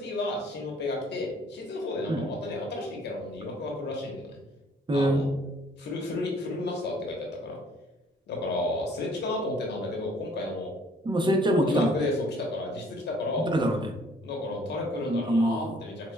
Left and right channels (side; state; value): both; normal; correlation 0.58